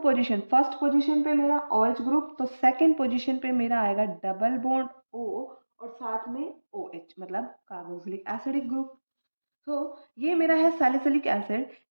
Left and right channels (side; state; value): both; inverted; correlation -1.00